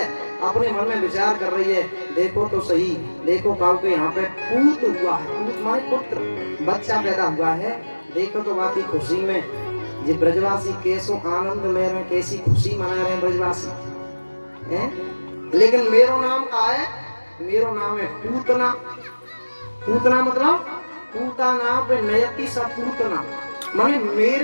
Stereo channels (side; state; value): both; inverted; correlation -1.00